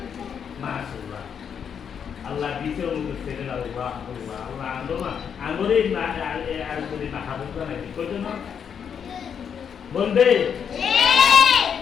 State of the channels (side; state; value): right; quieter; 7.5 dB